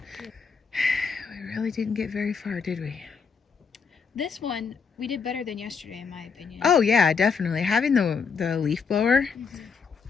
We really didn't get very far, did we? This one, we did better than yesterday, in my opinion. Oh, yeah, definitely. Having the leaf blower,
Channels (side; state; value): right; quieter; 5.7 dB